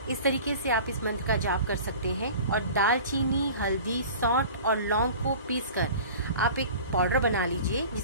इस तरीके से आप इस मंत्र का जाप कर सकते हैं। और दालचीनी, हल्दी, सौंठ और लौंग को पीसकर आप एक पाउडर बना लीजिए,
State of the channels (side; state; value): both; inverted; correlation -0.41